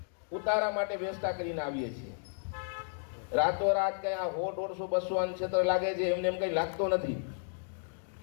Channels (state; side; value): silent; right; digital silence